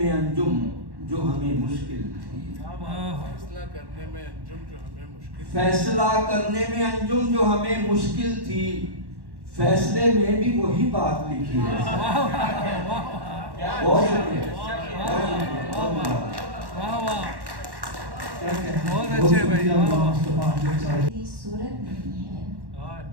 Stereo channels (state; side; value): late; left; 1.1 ms